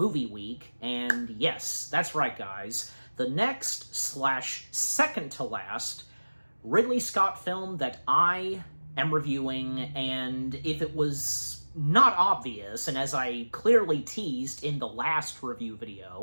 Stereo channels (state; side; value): inverted; both; correlation -1.00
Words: Week, and yes, that's right guys, the next/second to last Ridley Scott film that I am reviewing, and if it was not obvious, and as I clearly teased in the last review